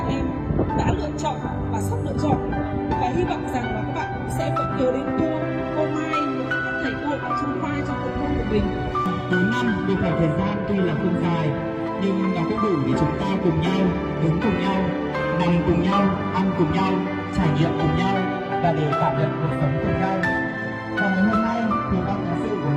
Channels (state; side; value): identical; both; correlation 1.00